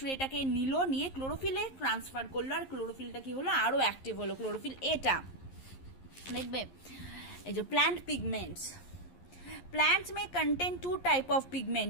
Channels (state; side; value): late; right; 11 ms